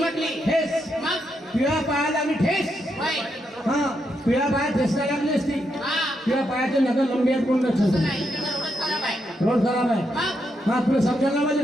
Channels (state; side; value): normal; both; correlation 0.81